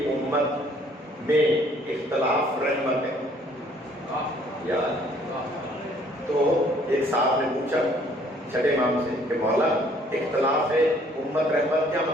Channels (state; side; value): normal; both; correlation 0.60